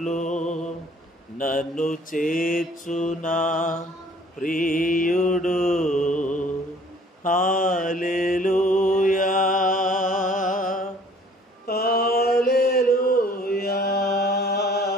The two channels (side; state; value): both; normal; correlation 0.55